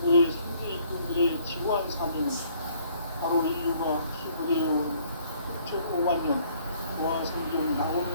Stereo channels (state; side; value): inverted; both; correlation -0.62